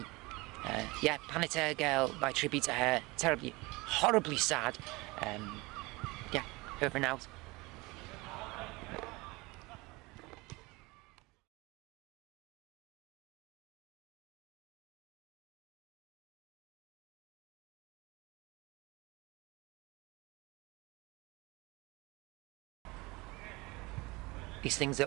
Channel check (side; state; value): left; quieter; 23.7 dB